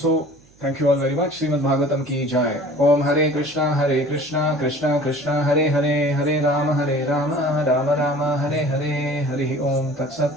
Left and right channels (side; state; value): right; noise; hum, 30 dB below the sound